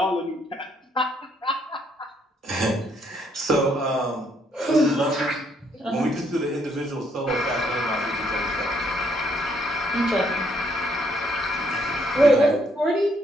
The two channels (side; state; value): both; normal; correlation 0.70